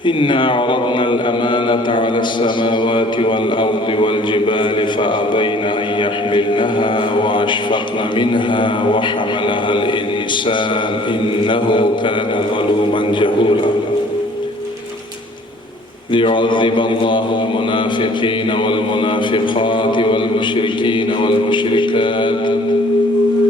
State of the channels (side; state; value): both; normal; correlation 0.54